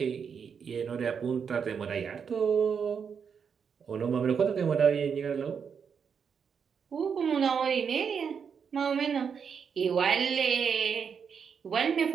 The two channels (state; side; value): quieter; left; 6.7 dB